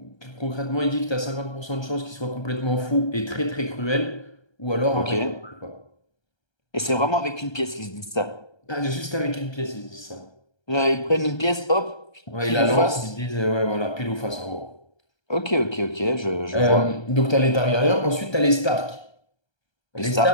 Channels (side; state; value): right; late; 1.3 ms